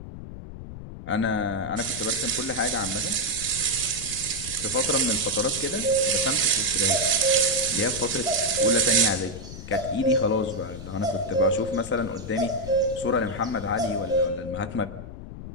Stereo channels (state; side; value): noise; left; rumble, 11 dB below the sound